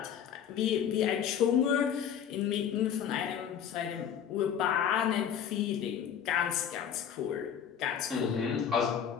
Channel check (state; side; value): quieter; right; 8.6 dB